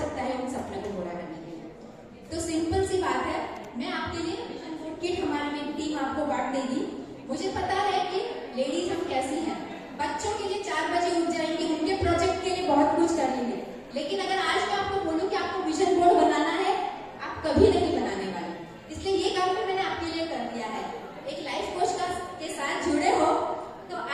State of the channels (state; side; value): identical; both; correlation 1.00